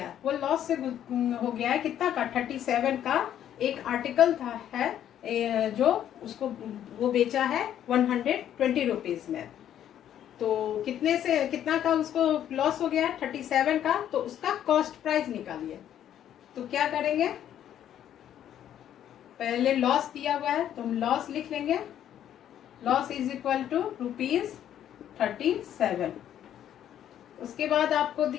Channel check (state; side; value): quieter; right; 10.6 dB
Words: वो लॉस से हो गया है कितना का 37 का एक आर्टिकल था है जो उसको वो बेचा है 120 रुपीज में। तो कितने से कितना का उसको लॉस हो गया 37 का, तो उसका कॉस्ट प्राइस निकालिए। तो क्या करेंगे, पहले लॉस दिया हुआ है तो हम लॉस लिख लेंगे, loss is equal to rupees 37। उसके बाद आपको